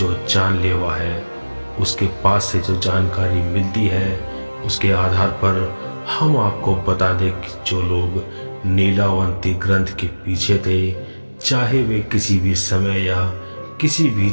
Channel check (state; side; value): inverted; both; correlation -1.00